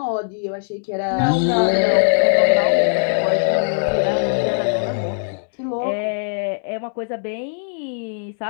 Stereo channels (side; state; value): right; silent; digital silence